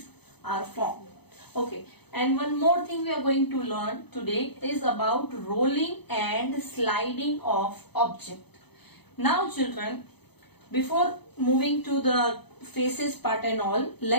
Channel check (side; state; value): right; late; 0.98 ms